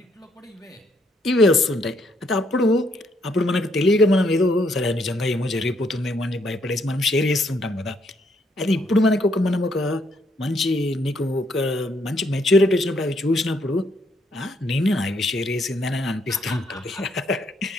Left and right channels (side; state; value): both; normal; correlation 0.72